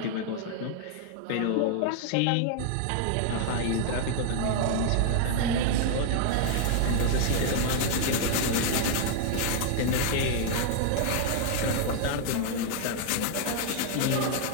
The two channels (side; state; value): both; different; correlation 0.00